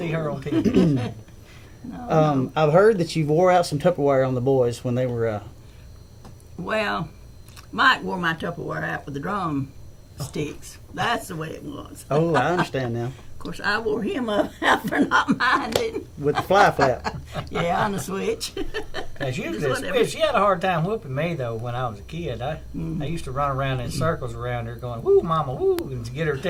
her on TV. No. I've heard that you wore out some Tupperware on the boys when they were... Well, Mike wore my Tupperware out with the drum sticks. That's the way it was. Oh, I understand now. Of course, I wore him out for not minding. With the fly flap. Yeah, on the switch. She whatever. she had a hard time whooping me, though, when I was a kid. I used to run around in circles around her going, woo, mama, woo, and to get her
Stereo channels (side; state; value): both; identical; correlation 1.00